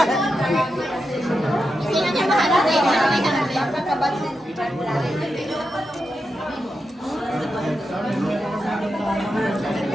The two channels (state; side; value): normal; both; correlation 0.87